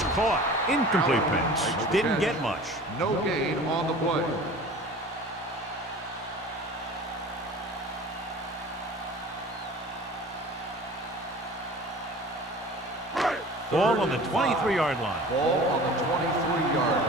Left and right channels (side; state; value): both; normal; correlation 0.41